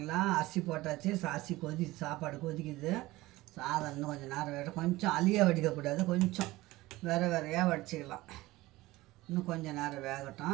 அரிசி போட்டாச்சு. அரிசி சாப்பாடு கொதிக்குது. சாதம் இன்னும் கொஞ்சம் நேரம் வேணும். கொஞ்சம் அழியாக வடிக்கக்கூடாது, கொஞ்சம் வேறையாக வடிச்சிக்கலாம். இன்னும் கொஞ்சம் நேரம்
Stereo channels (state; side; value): quieter; left; 18.8 dB